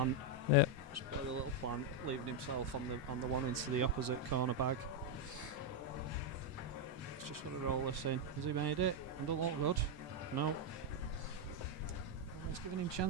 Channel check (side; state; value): both; normal; correlation 0.01